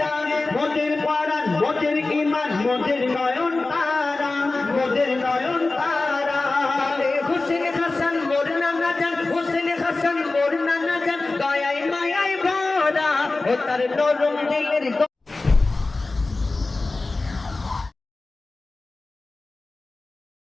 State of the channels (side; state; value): right; quieter; 3.4 dB